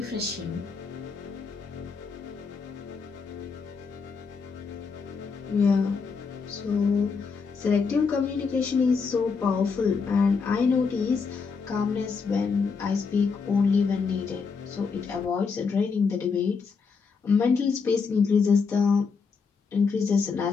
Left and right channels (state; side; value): quieter; right; 5.2 dB